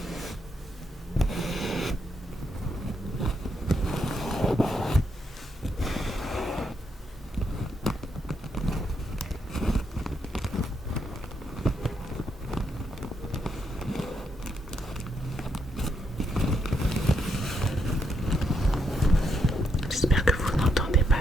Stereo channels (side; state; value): both; normal; correlation 0.78